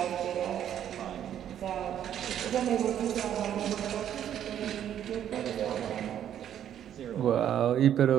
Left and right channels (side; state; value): left; quieter; 10.2 dB